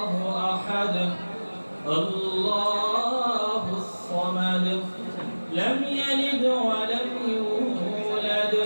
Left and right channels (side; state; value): both; inverted; correlation -1.00